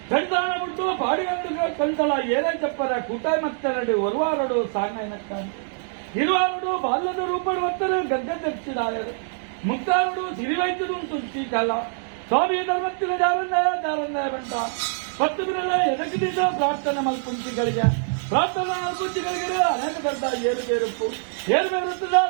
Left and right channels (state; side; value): silent; left; digital silence